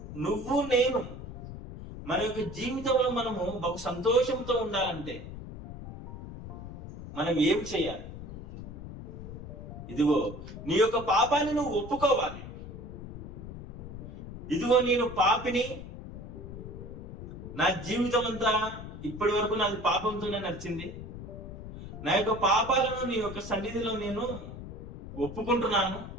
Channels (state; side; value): noise; left; rumble, 11 dB below the sound